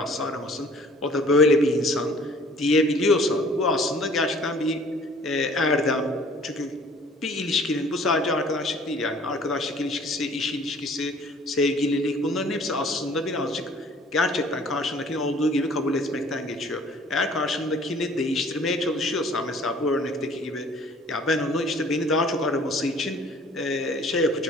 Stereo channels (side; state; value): both; normal; correlation 0.53